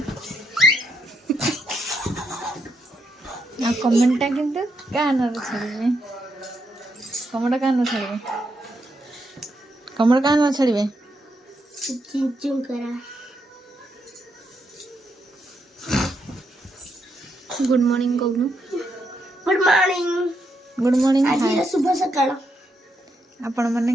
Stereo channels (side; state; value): both; normal; correlation 0.79